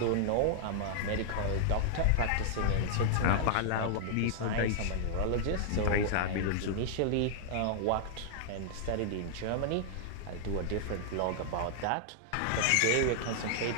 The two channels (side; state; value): both; different; correlation -0.01